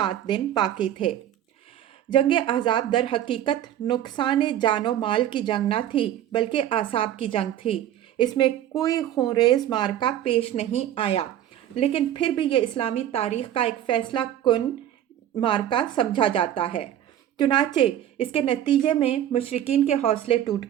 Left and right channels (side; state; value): left; quieter; 11.4 dB